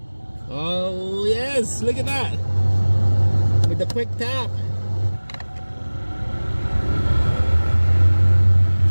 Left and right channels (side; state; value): both; inverted; correlation -1.00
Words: Oh yes, look at that. With the quick tap.